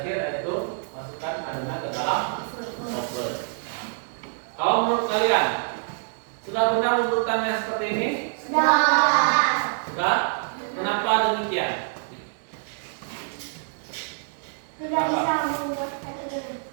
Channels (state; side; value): silent; left; digital silence